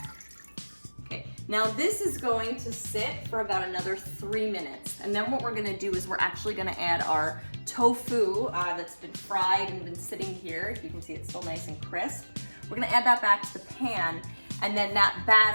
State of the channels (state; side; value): inverted; both; correlation -1.00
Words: Okay, now this is going to sit for about another 3 minutes. And then what we're gonna do is we're actually gonna add our tofu that's been fried and been sitting here. You can see it's still nice and crisp. We're gonna add that back to the pan, and then that